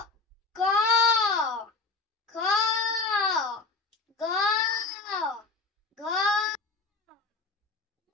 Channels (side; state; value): right; quieter; 3.9 dB